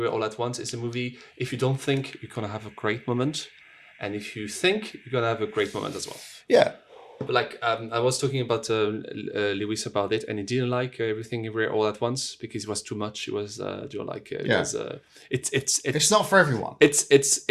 All at Once is a movie. If you don't think, you're gonna have a great moment, and if you think, you're gonna have a great moment as well. Yeah, but I was talking about Lewis about it, and he didn't like Everything Everywhere All at Once because it was too much. It was it's not for everyone.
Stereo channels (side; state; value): both; identical; correlation 1.00